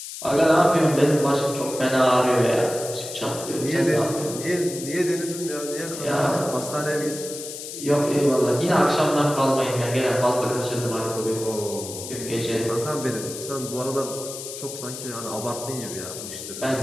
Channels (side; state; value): left; noise; hiss, 10 dB below the sound